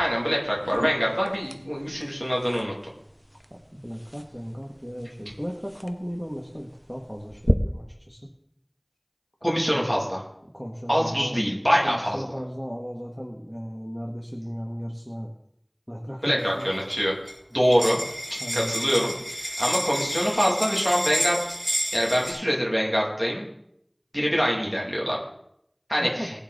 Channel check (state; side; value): identical; both; correlation 1.00